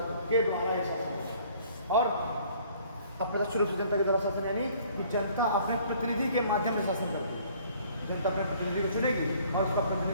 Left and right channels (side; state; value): both; inverted; correlation -0.57